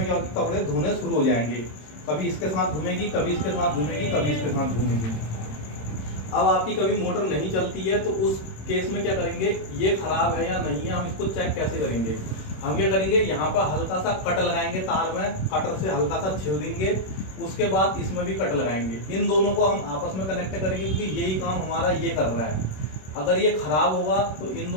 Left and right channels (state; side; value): late; right; 26 ms